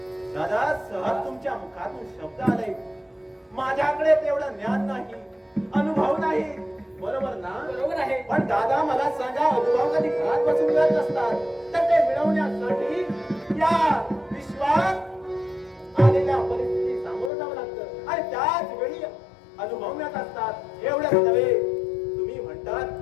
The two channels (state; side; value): drops out; right; at 17.3 s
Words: दादा, सहज तुमच्या मुखातून शब्द आले. माझ्याकडे तेवढं ज्ञान नाही, अनुभव नाही. बरोबर ना? बरोबर आहे. पण दादा, मला सांगा, अनुभव कधी घरात बसून मिळत नसतात, तर ते मिळवण्यासाठी या विश्वात आलेल्या परिस्थिती सामोरं जावं लागतं आणि त्याच वेळी अनुभव मिळत असतात. एवढंच नव्हे, तुम्ही